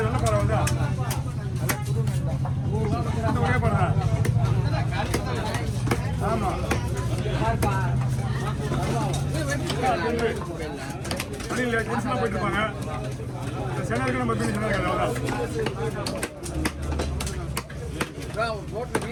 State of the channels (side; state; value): both; identical; correlation 1.00